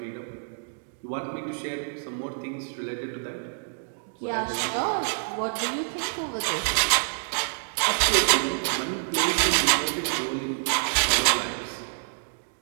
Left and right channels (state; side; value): silent; left; digital silence